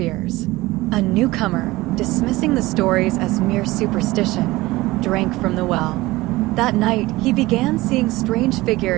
A newcomer, dismissing the stories as mere superstition, drank from the well. That night, he began seeing strange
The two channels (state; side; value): quieter; left; 19.4 dB